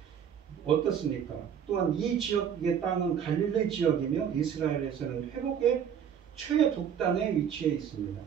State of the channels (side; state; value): left; quieter; 8.3 dB